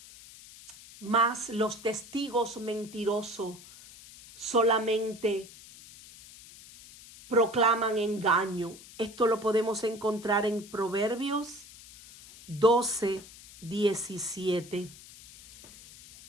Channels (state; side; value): noise; left; hiss, 19 dB below the sound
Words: mas los testigos mentirosos solamente proclaman engaño. Esto lo podemos encontrar en Proverbios 12:17.